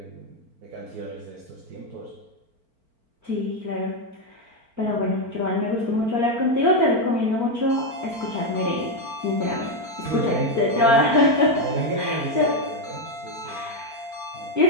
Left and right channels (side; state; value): left; late; 4.4 ms